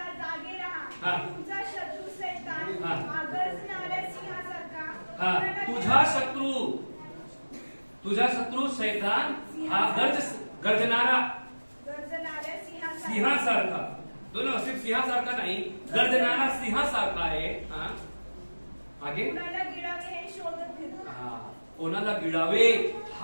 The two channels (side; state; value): both; inverted; correlation -1.00